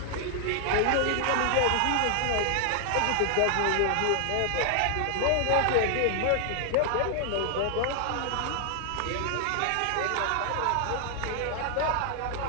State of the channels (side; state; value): both; different; correlation 0.00